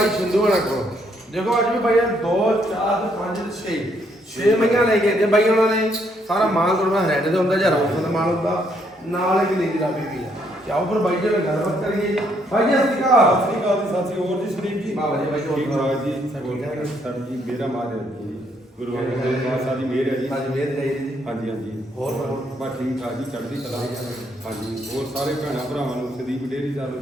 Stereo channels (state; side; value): normal; both; correlation 0.71